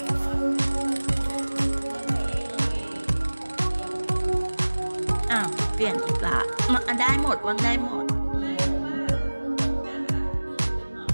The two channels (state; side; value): inverted; both; correlation -1.00